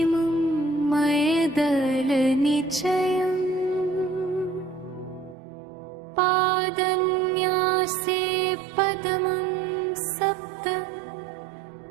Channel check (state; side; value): drops out; left; at 5.4 s